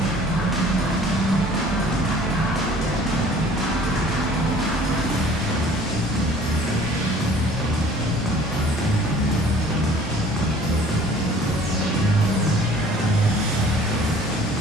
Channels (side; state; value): both; normal; correlation 0.51